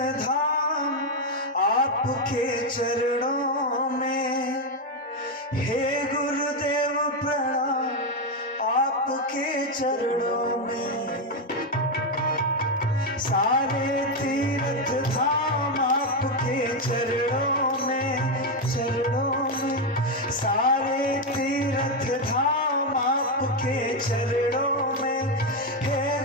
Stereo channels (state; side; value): normal; both; correlation 0.06